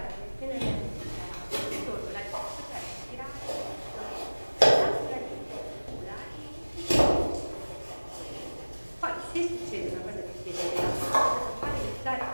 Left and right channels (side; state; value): both; inverted; correlation -1.00